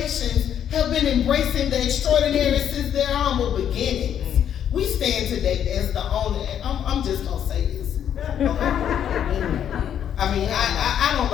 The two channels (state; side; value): quieter; right; 9.4 dB